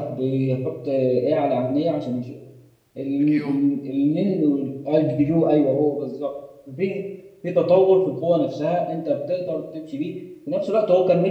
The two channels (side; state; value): both; identical; correlation 1.00